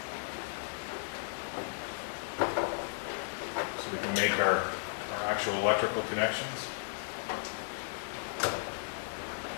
so we can make our actual electrical connections.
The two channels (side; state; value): right; silent; digital silence